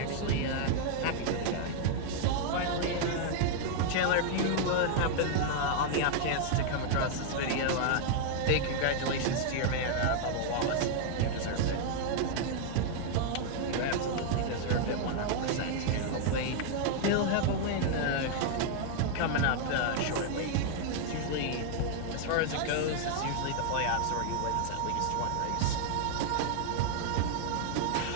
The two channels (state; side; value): different; both; correlation 0.00